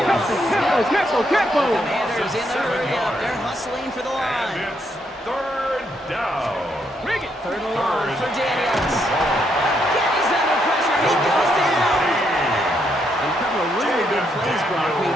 Commanders in the hurry-up. They're hustling for the line. And it's 3rd down. 3rd and long for Daniels. Again, he's under pressure. He goes down. And a couple of really good plays, Brock, made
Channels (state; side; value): normal; both; correlation 0.76